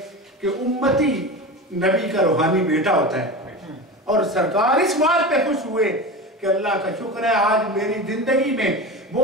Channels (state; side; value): normal; both; correlation 0.27